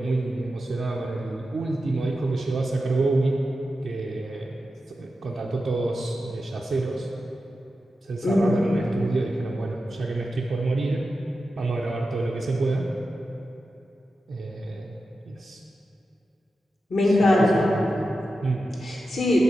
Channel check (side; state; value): both; normal; correlation 0.91